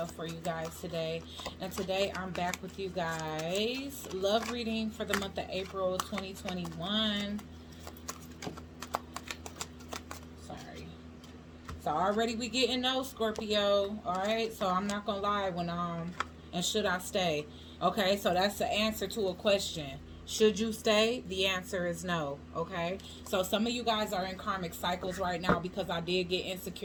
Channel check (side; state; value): both; identical; correlation 1.00